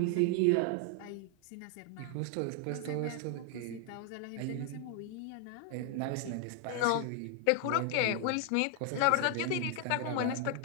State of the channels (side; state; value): both; different; correlation 0.00